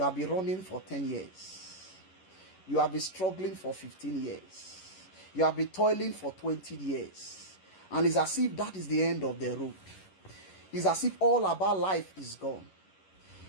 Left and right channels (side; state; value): right; late; 11 ms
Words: have been running for 10 years. You have been struggling for 15 years. You have been toiling for 20 years. And it's as if that is the end of the road. It's as if all about life is gone.